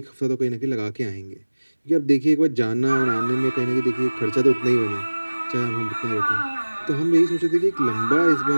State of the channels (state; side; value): inverted; both; correlation -1.00